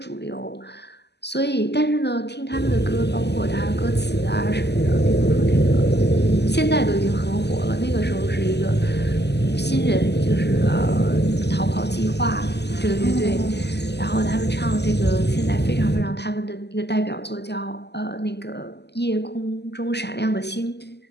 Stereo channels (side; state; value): right; late; 0.50 ms